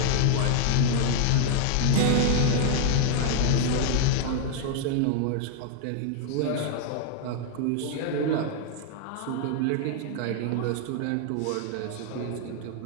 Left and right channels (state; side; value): different; both; correlation 0.00